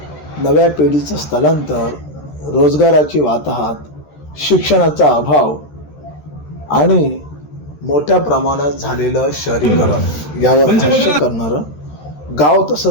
नव्या पिढीचं स्थलांतर, रोजगाराची वाताहत, शिक्षणाचा अभाव आणि मोठ्या प्रमाणात झालेलं शहरीकरण यावर भाष्य करणारं गाव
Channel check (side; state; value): right; late; 13 ms